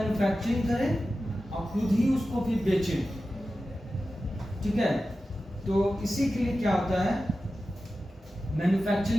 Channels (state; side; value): normal; both; correlation 0.93